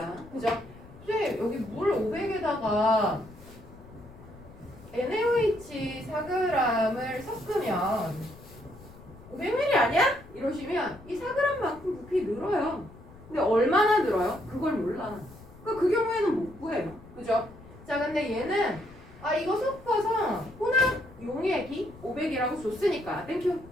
그죠? 근데 여기 물 500에다가 NaOH 4g을 섞으면 500ml 아니야? 이러시면 이 4g만큼 부피 늘어요. 근데 얼마나 늘어요? 그걸 몰라. 그러니까 그 경우에는 못 구해요. 그죠? 자, 근데 얘는 이거 섞어서 혼합 용액이 500이라고 줬으니까 땡큐.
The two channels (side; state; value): left; noise; rumble, 20 dB below the sound